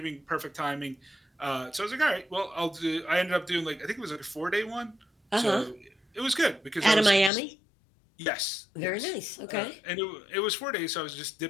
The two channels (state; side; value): drops out; right; at 7.3 s